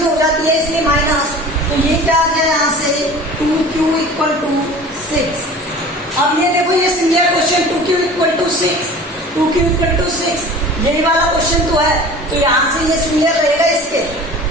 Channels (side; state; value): both; normal; correlation 0.41